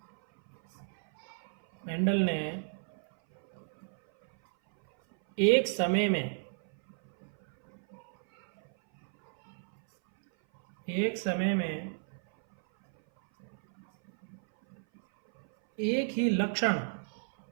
ने एक समय में एक ही लक्षण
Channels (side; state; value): left; silent; 56 dB below the other